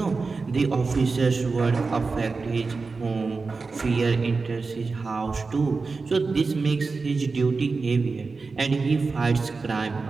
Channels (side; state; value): left; quieter; 4.2 dB